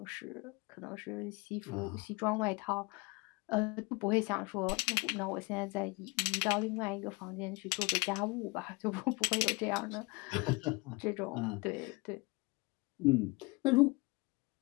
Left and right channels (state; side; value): quieter; right; 26.2 dB